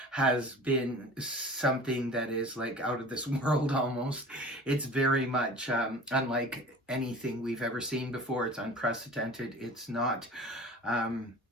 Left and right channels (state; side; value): normal; both; correlation 0.41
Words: has been something that is like out of this world almost. It's very much unlike anything we've ever seen before. It's unprecedented. It's not